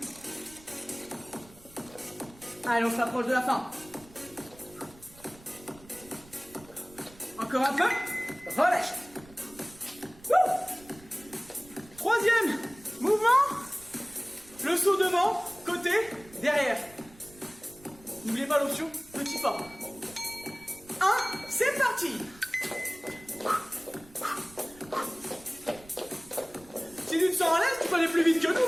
Allez, on s'approche de la fin. Encore un peu. Relâche. Wouh. Troisième mouvement. Le saut devant, côté, derrière. N'oubliez pas l'option petit pas. 1, c'est parti. Si tu te sens à l'aise, peux aller plus vite que nous,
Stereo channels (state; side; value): noise; right; rumble, 23 dB below the sound